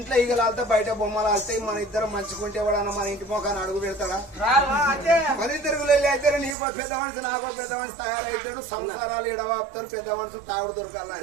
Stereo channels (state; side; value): drops out; left; at 6.6 s